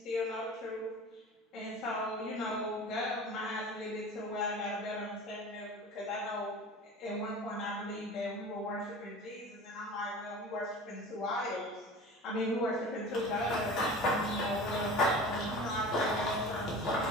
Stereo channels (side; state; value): both; normal; correlation 0.37